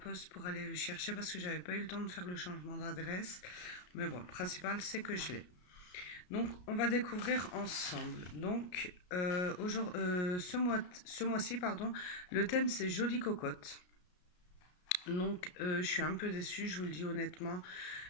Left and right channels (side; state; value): right; late; 33 ms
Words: pour aller le chercher parce que j'avais pas eu le temps de faire le changement d'adresse. Mais bon, le principal c'est que je l'ai. Donc, on va découvrir ensemble. Donc, ce mois-ci, pardon, le thème c'est Jolie Cocotte. Donc, je suis un peu déçue, je vous le dis honnêtement.